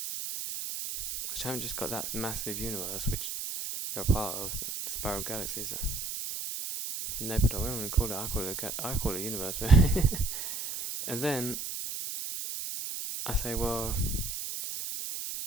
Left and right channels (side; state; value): right; noise; hiss, 5 dB below the sound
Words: Because you haven't just got that massive universe, which you're a part of, the spiral galaxies, nebula. What am I going to call it? I call it a universe. And then I say, well,